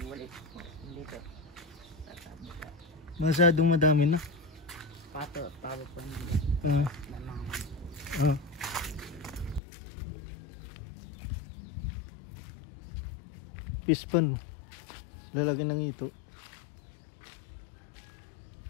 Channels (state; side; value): drops out; right; at 9.6 s